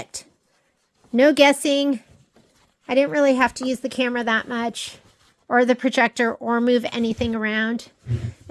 No guessing. I didn't really have to use the camera that much, or the projector, or move anything around.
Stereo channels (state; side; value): identical; both; correlation 1.00